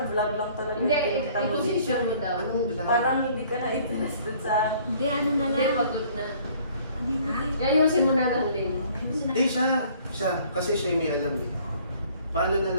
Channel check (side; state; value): both; inverted; correlation -0.57